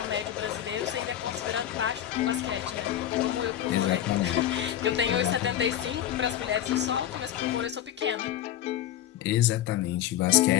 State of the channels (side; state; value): right; quieter; 11.6 dB